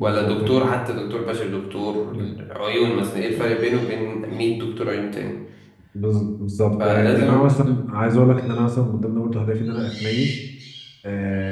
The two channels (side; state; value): both; identical; correlation 1.00